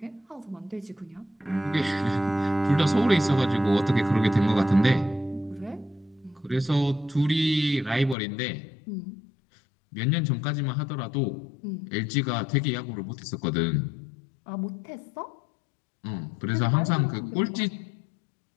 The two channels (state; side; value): drops out; right; at 8.2 s